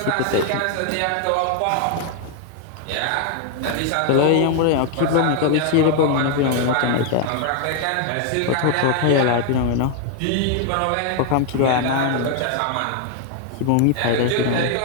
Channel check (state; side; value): different; both; correlation 0.00